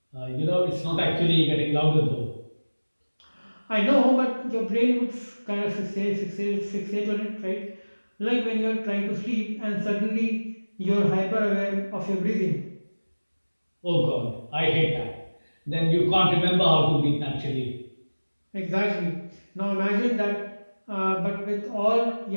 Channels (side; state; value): both; inverted; correlation -1.00